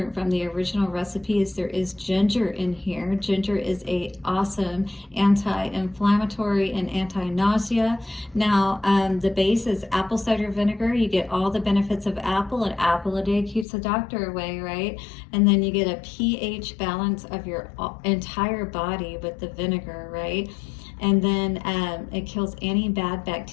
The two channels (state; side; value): drops out; right; at 13.7 s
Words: from the original recipe is there is ginger in here. Ginger is a awesome anti-inflammatory and anti-nausea. Now the base is apple cider vinegar. You get all the benefits of apple. An apple a day keeps the doctor away, right? And then you get a pH balance of your entire body with the vinegar, right? And then it kills any bad